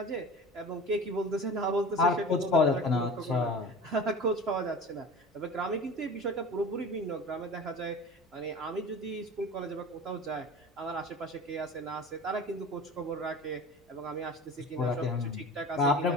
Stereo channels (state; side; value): normal; both; correlation 0.36